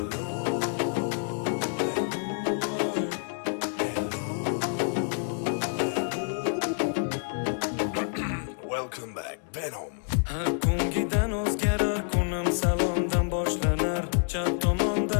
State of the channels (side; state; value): right; silent; 59 dB below the other